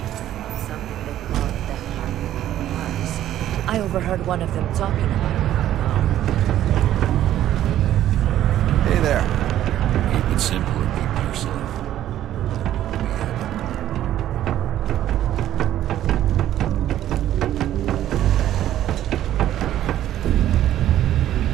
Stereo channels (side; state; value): left; quieter; 12.3 dB